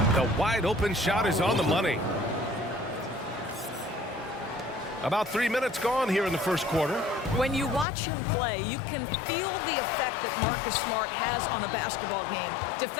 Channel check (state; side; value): drops out; right; at 7.9 s